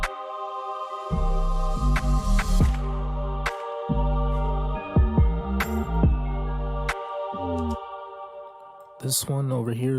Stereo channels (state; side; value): identical; both; correlation 1.00